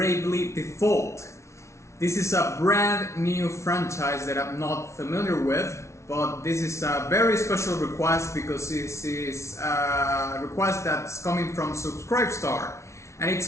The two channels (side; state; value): right; late; 0.13 ms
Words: Default. This is a brand new franchise that I'm not familiar with, but this is a very special request because this is a request that's coming from Subscribestar and